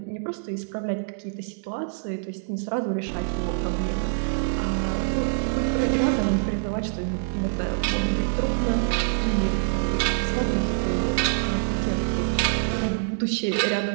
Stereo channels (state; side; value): silent; left; digital silence